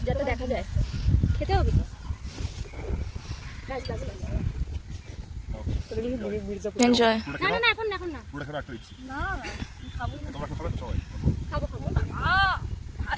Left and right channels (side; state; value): both; identical; correlation 1.00